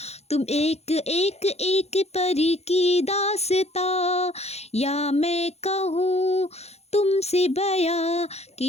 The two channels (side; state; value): right; late; 0.31 ms